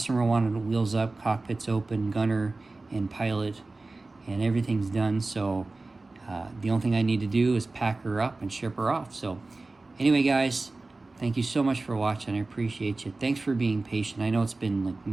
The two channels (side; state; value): left; quieter; 3.3 dB